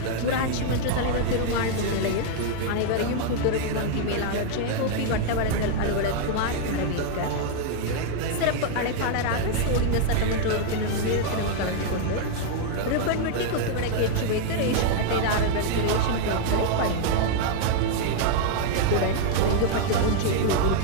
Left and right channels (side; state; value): both; different; correlation -0.01